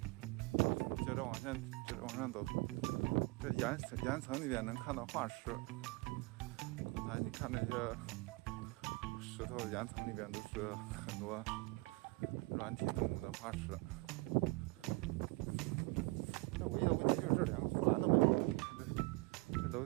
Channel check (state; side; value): quieter; left; 24.8 dB